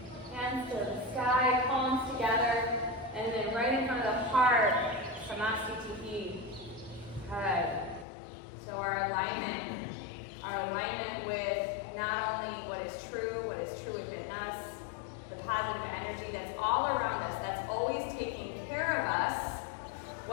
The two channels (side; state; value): right; drops out; at 8.1 s